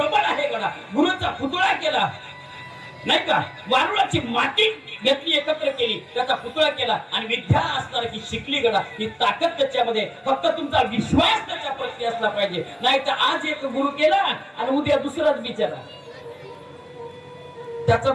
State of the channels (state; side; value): identical; both; correlation 1.00